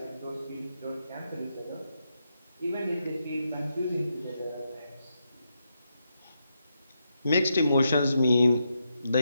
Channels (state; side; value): inverted; both; correlation -0.83